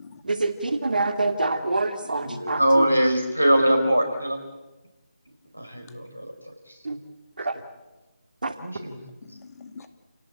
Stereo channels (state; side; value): inverted; both; correlation -0.91